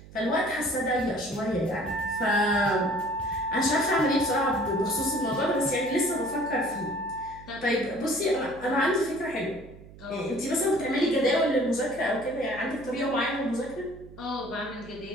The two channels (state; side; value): noise; right; hum, 19 dB below the sound